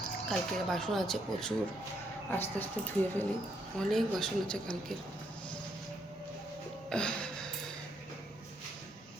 কালকের বাসন আছে প্রচুর, আস্তে আস্তে ধুয়ে ফেলি, অনেক বাসন আছে কালকের।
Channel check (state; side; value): normal; both; correlation 0.75